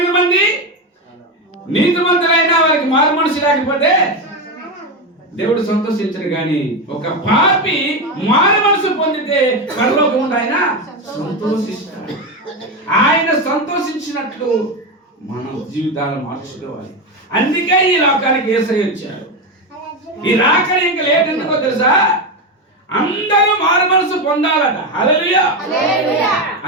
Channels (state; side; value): normal; both; correlation 0.14